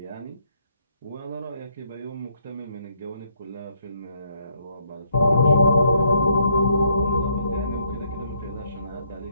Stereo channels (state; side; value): inverted; both; correlation -0.72